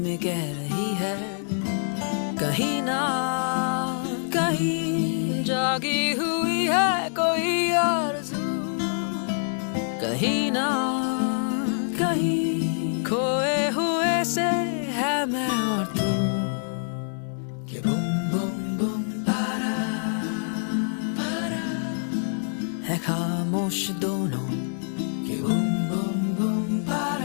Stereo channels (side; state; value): right; silent; digital silence